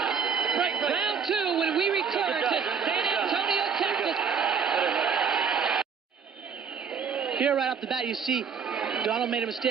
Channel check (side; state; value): left; quieter; 6.5 dB